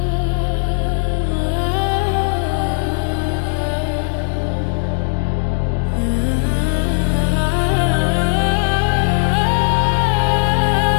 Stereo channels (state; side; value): silent; right; 65 dB below the other